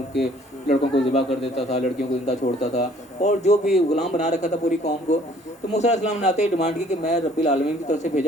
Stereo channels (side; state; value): both; normal; correlation 0.58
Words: کے لڑکوں کو ذبح کر دیتا تھا، لڑکیوں کو زندہ چھوڑتا تھا، اور جو بھی غلام بنا رکھا تھا پوری قوم کو، تو موسیٰ علیہ السلام نے آتے ہی ڈیمانڈ کی کہ میں رب العالمین کی طرف سے